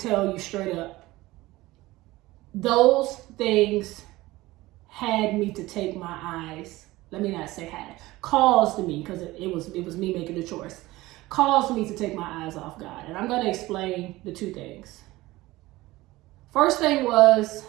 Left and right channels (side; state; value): left; quieter; 18.8 dB